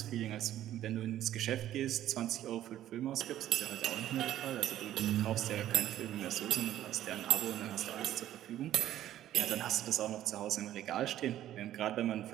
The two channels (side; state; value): left; quieter; 12.6 dB